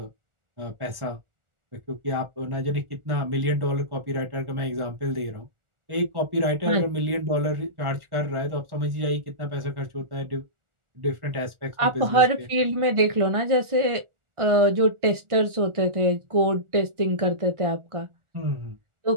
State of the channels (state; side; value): late; left; 1.4 ms